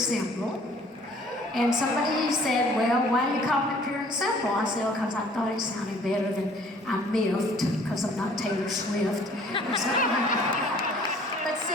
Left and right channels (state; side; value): normal; both; correlation 0.55